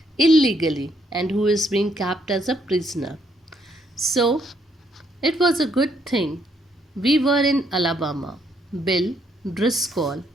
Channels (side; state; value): both; normal; correlation 0.72